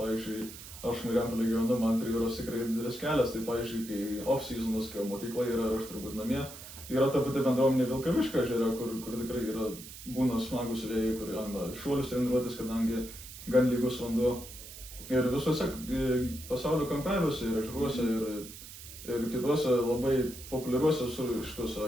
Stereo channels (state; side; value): noise; right; hiss, 14 dB below the sound